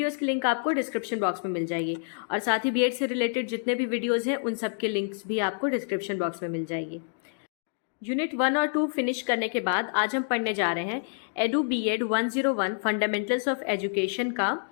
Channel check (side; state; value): right; silent; digital silence